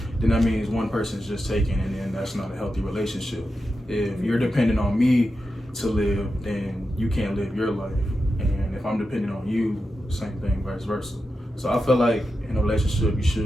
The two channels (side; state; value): both; normal; correlation 0.89